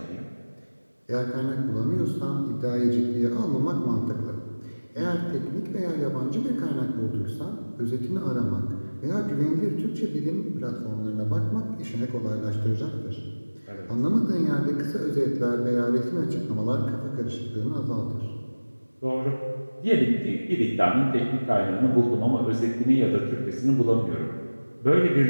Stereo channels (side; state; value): both; inverted; correlation -1.00